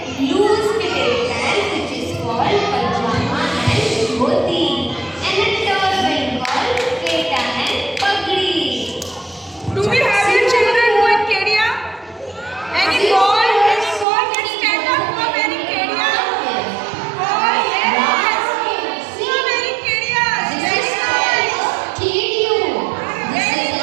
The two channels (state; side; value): drops out; left; at 14.1 s